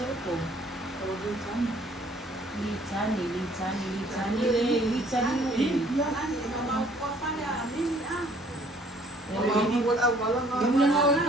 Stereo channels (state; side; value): normal; both; correlation 0.59